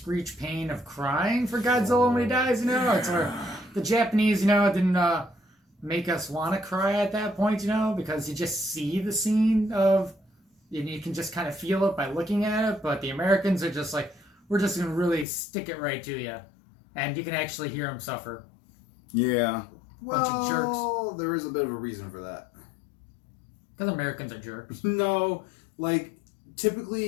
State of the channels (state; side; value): drops out; right; at 15.2 s